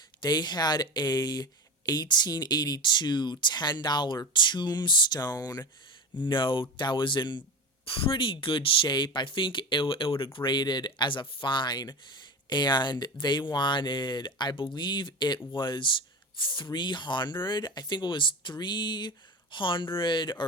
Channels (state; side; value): normal; both; correlation 0.26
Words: They had a 1882 $10 tombstone note that was in pretty good shape. I think it would have graded as a fine, and they wanted, I believe it was 300. I think it was 300